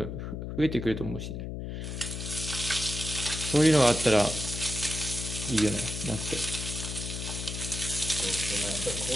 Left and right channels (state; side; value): noise; left; hum, 6 dB below the sound